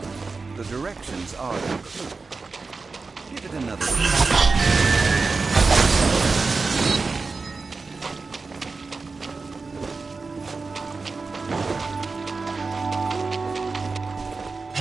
The directions are the clue. Give it another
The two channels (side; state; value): left; quieter; 4.2 dB